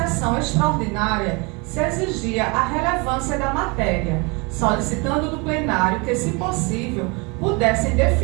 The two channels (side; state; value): left; quieter; 28.5 dB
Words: extraordinária se exigia a relevância da matéria, solicitando do plenário que, se possível, pudessem